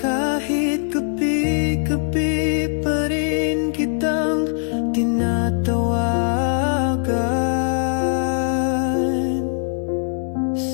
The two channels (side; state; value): right; silent; digital silence